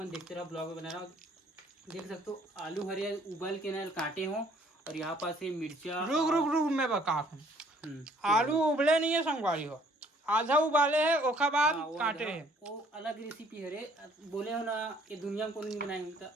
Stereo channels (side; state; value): both; normal; correlation 0.60